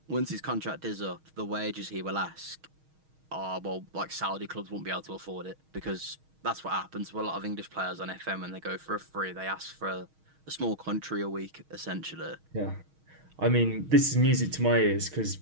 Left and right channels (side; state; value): left; late; 6.4 ms